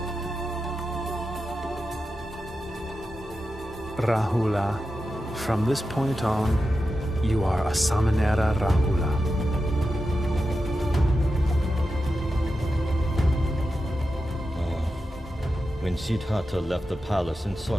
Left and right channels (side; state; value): both; normal; correlation 0.90